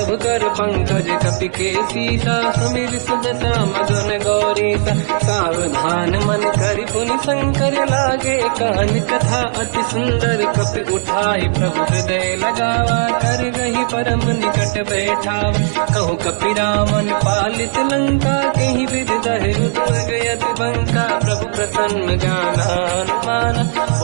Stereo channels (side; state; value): left; silent; 57 dB below the other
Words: कर पंकज कपि के सीसा समीर सुदशा मगन गौरीसा सावधान मन करि पुनि शंकर लागे कान कथा अति सुंदर कपि उठाई प्रभु हृदय लगावा कर गही परम निकट बैठावा कहु कपि रामन पालित लंका कहीं विधि दहे दुर्ग यति बंका प्रभु प्रसन्न ज्ञानानुमान